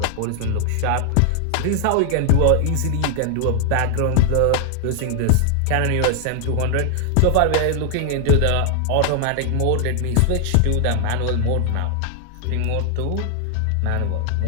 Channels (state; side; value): different; both; correlation 0.00